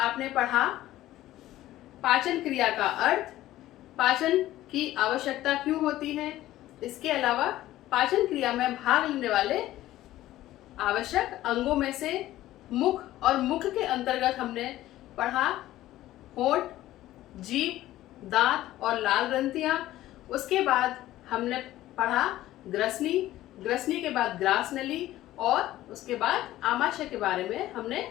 पढ़ा पाचन क्रिया का अर्थ, पाचन की आवश्यकता क्यों होती है, इसके अलावा पाचन क्रिया में भाग लेने वाले आवश्यक अंगों में से मुख और मुख के अंतर्गत हमने पढ़ा होंठ, जीभ, दांत और लाल ग्रंथियां। उसके बाद हमने पढ़ा ग्रसनी, ग्रसनी के बाद ग्रास नली और उसके बाद आमाशय के बारे में हमने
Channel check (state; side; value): quieter; right; 14.9 dB